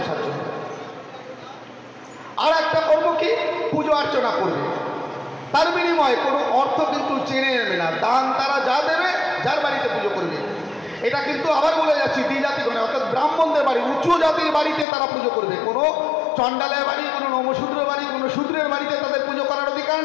চলবে। আর একটা কর্ম কি, পুজো অর্চনা করবে, তার বিনিময়ে কোনো অর্থ কিন্তু চেনে নেবে না। দান তারা যা দেবে, যার বাড়িতে পুজো করবে। এটা কিন্তু আবার বলে যাচ্ছি দ্বিজাতিগণে, অর্থাৎ ব্রাহ্মণদের বাড়ি, উচ্চ জাতির বাড়িতে তারা পুজো করবে। কোনো চণ্ডালের বাড়ি, কোনো নমশূদ্রের বাড়ি, কোনো শূদ্রের বাড়িতে তাদের পুজো করার অধিকার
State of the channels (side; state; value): right; drops out; at 14.9 s